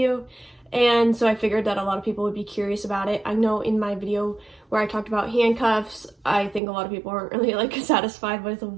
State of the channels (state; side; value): drops out; left; at 6.6 s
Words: and so I figured that a lot of people would be curious about it. I know in my video where I talked about handcuffs, I think a lot of people weren't really like satisfied with